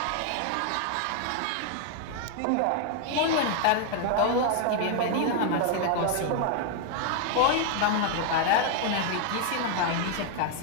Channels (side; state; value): both; different; correlation 0.00